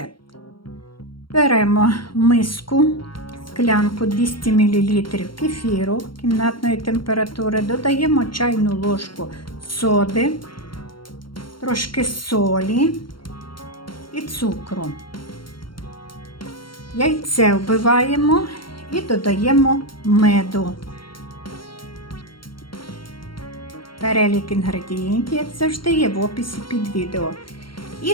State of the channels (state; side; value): late; right; 0.73 ms